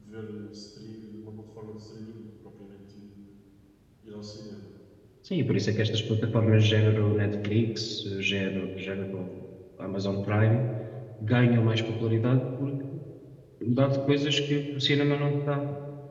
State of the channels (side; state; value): both; identical; correlation 1.00